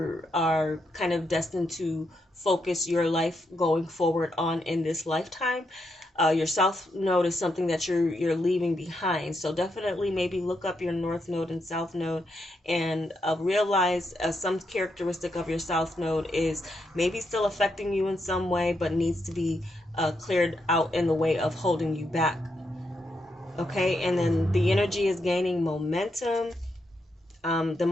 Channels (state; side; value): normal; both; correlation 0.81